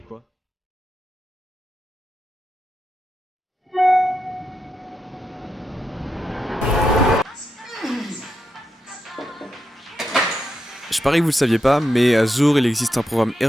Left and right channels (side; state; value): both; normal; correlation 0.85